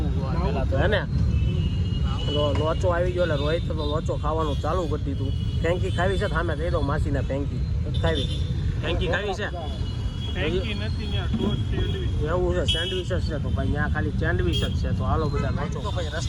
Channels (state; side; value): identical; both; correlation 1.00